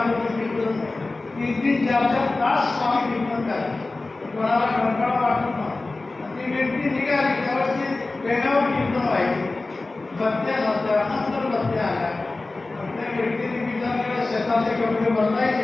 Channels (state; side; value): quieter; right; 3.3 dB